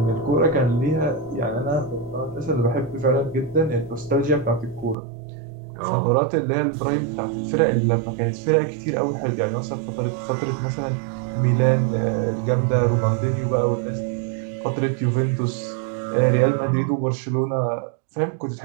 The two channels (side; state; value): left; drops out; at 5.0 s